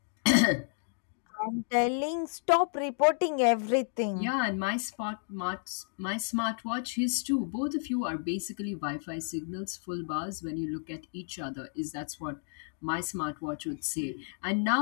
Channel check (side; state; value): right; silent; 57 dB below the other